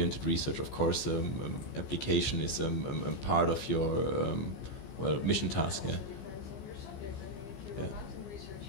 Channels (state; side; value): late; right; 15 ms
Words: research, of course, application is part of your mission task. Yeah.